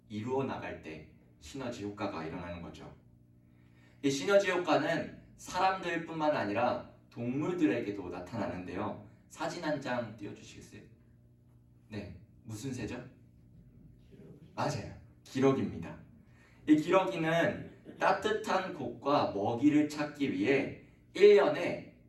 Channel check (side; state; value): both; identical; correlation 1.00